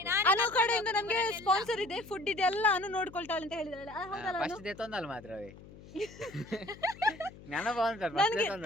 ಅನು ಕಡೆಯಿಂದ ನಮಗೆ ಸ್ಪಾನ್ಸರ್ ಇದೆ ಫುಡ್ ಇದೆ ಎಲ್ಲ ಅನು ನೋಡ್ಕೊಳ್ತಾಳೆ ಅಂತ ಹೇಳಿದಾಳೆ ಹೌದಲ್ಲ ಫಸ್ಟ್ ದೇ ತೊಂದಲ್ಲ ಮಾತ್ರವೇ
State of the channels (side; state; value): left; noise; hum, 19 dB below the sound